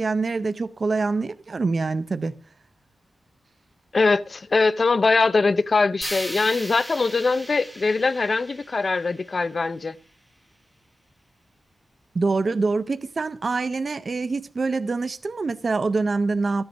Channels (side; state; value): both; normal; correlation 0.92